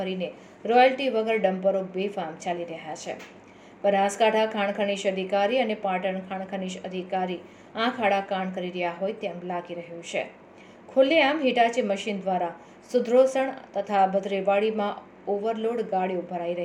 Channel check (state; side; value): identical; both; correlation 1.00